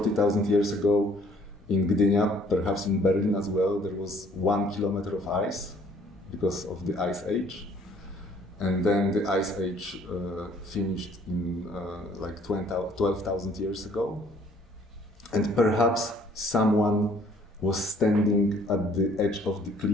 years ago in Gdynia, perhaps in Berlin as well, there was 1 kilometer of ice because of the Ice Age. And then the Ice Age finished in like 12,000 years ago. And perhaps someone was standing at the edge of the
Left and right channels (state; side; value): normal; both; correlation 0.60